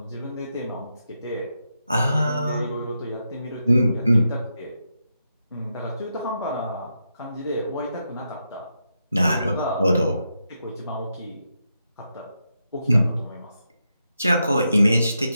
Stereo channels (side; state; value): both; inverted; correlation -0.84